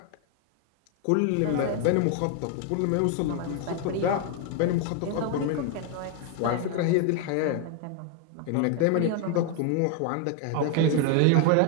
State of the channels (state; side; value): different; both; correlation 0.01